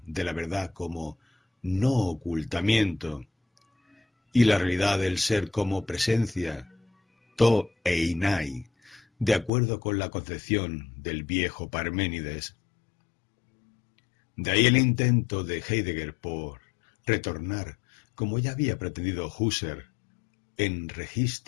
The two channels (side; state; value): right; drops out; at 9.5 s